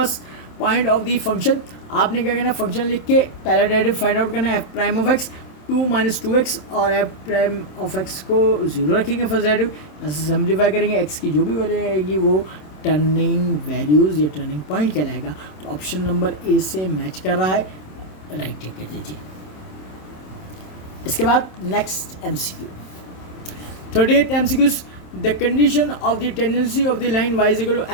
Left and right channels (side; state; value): right; late; 27 ms